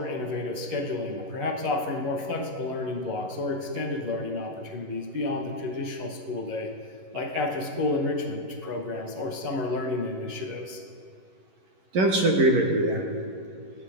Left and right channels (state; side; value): late; left; 11 ms